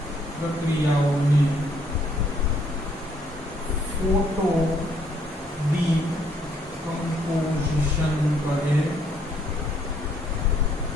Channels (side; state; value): both; normal; correlation 0.67